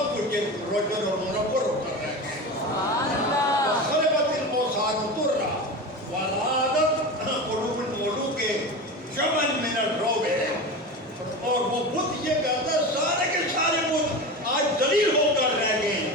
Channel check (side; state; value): both; normal; correlation 0.26